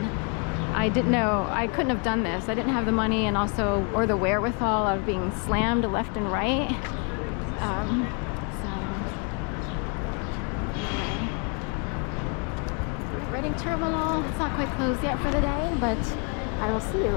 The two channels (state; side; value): quieter; right; 37.5 dB